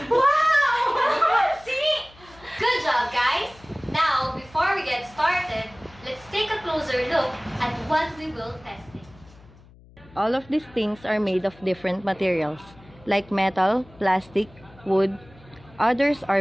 Wow! Calamansi! Good job, guys. Now, before we get started, let's take a closer look at what we will test. All of these things are made of different materials, like metal, plastic, wood. Others are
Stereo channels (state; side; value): noise; left; hum, 24 dB below the sound